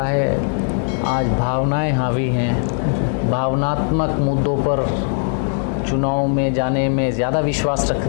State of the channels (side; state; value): right; silent; 62 dB below the other